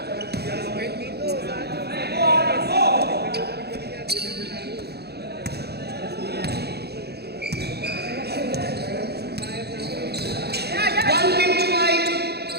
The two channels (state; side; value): late; left; 0.47 ms